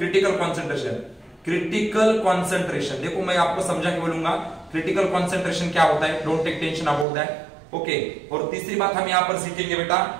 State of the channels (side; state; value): left; drops out; at 7.1 s